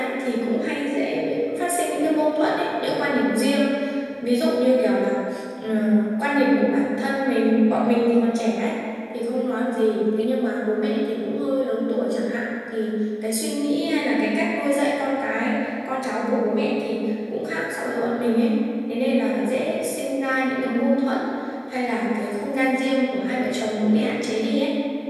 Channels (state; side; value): identical; both; correlation 1.00